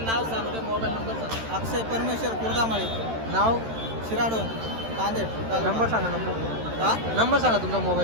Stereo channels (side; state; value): left; late; 13 ms